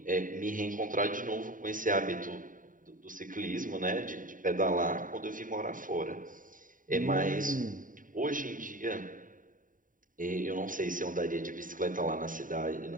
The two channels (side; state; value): left; late; 0.39 ms